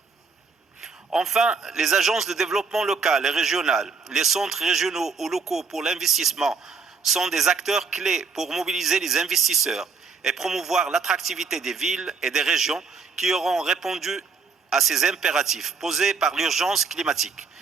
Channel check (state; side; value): quieter; left; 5.0 dB